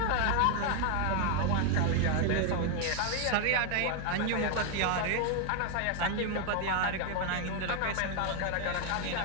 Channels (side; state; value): both; different; correlation 0.01